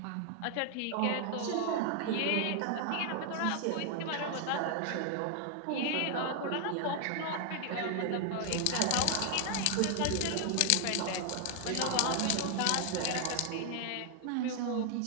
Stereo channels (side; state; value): both; different; correlation 0.00